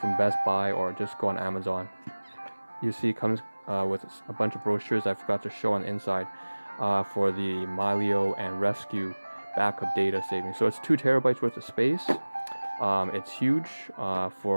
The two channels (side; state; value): both; inverted; correlation -1.00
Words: from Best Buy or just go on Amazon. You see it comes with a bunch of brochures I forgot to show on the inside for the Milio and Rescue backup data saving. So it's 2 terabytes worth of space. It's huge